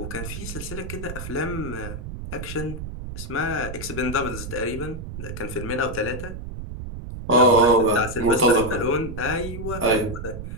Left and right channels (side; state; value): right; noise; rumble, 8 dB below the sound